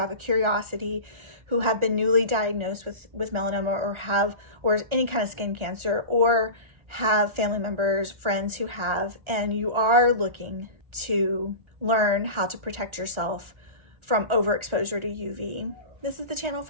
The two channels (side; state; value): left; late; 1.4 ms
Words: a curiosity, who have been newly diagnosed with melanoma or any kind of skin cancer, or have family members, friends who have, and you are looking to learn how to protect yourself from overexposure to UV, this is the channel